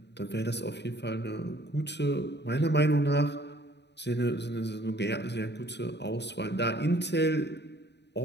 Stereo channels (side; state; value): right; late; 0.50 ms